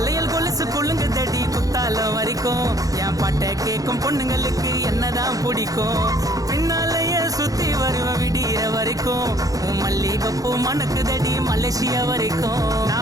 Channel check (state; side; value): late; left; 0.17 ms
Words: கொலுசு குள்ளுங்க தடி குத்தாலம் வரைக்கும் என் பாட்டை கேட்கும் பொண்ணுங்களுக்கு என்னதான் பிடிக்கும். பின்னாலேயே சுத்தி வருவ விடிய வரைக்கும் உன் மல்லிகைப்பூ மணக்கு தடி மலேசியா வரைக்கும்.